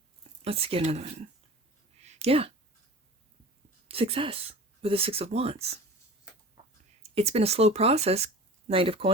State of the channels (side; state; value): both; normal; correlation 0.38